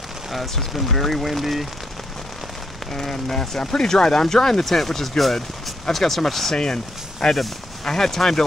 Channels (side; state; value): both; normal; correlation 0.76